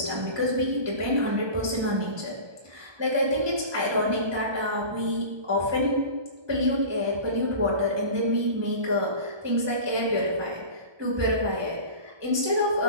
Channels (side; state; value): left; late; 1.2 ms